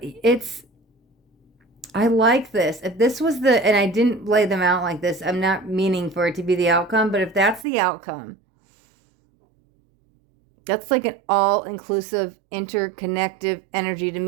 I like this. If this was and I didn't lay them out like this, I'm not meaning for it to be the outcome, but if that's the outcome, that's like an all-inclusive, interconnective energy to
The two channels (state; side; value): drops out; left; at 7.7 s